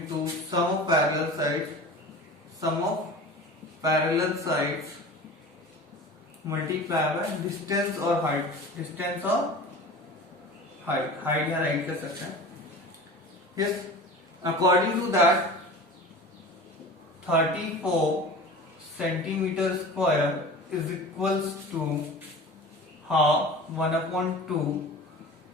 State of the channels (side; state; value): both; normal; correlation 0.36